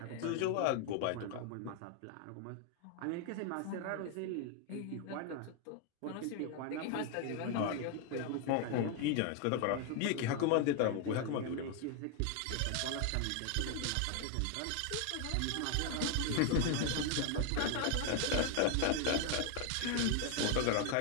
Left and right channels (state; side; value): different; both; correlation 0.00